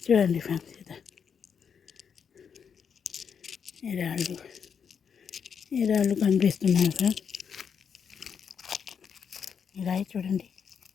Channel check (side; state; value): right; quieter; 7.0 dB